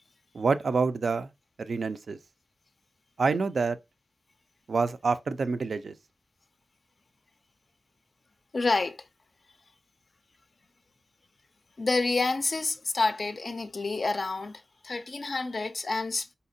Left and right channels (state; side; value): normal; both; correlation 0.90